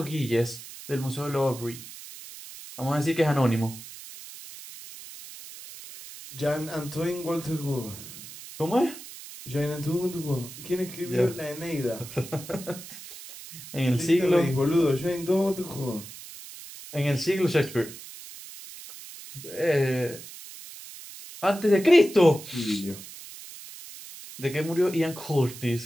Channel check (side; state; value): right; noise; hiss, 14 dB below the sound